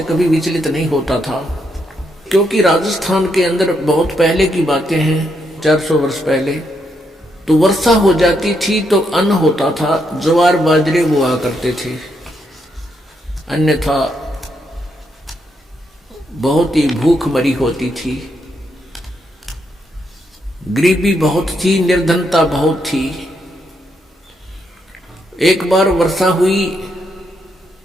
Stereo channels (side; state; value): both; normal; correlation 0.78